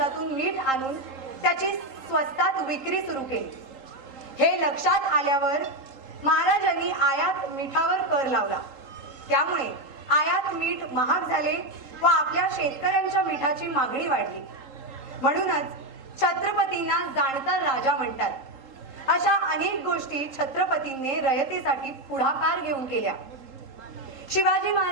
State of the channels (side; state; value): left; late; 3.8 ms